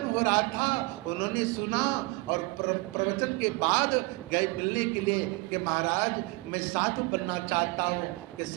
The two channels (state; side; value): quieter; left; 24.6 dB